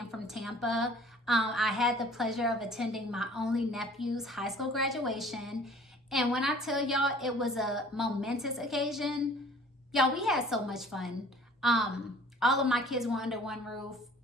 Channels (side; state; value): both; normal; correlation 0.51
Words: from Tampa. I had the pleasure of attending my only nephew's high school graduation. And when I tell y'all it was a momentous occasion, y'all, we had so much fun. All of my kids were under one roof.